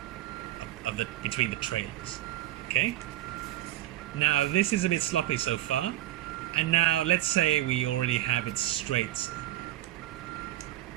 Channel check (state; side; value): quieter; left; 14.6 dB